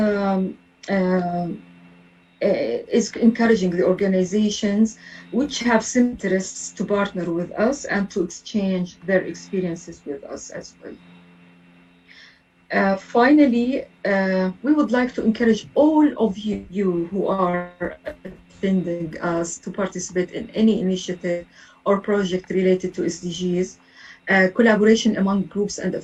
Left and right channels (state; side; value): identical; both; correlation 1.00